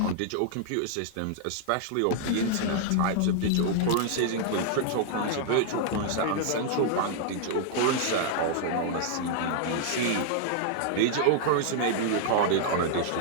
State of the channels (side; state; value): both; different; correlation -0.01